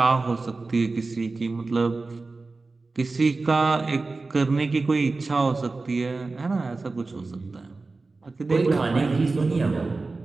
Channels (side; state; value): left; quieter; 3.6 dB